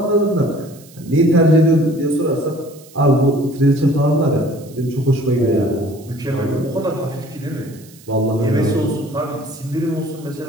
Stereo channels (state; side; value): noise; right; hiss, 24 dB below the sound